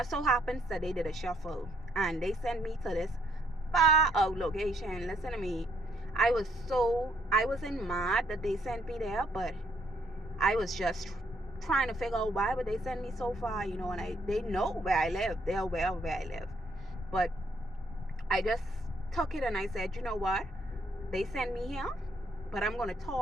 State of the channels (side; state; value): both; normal; correlation 0.70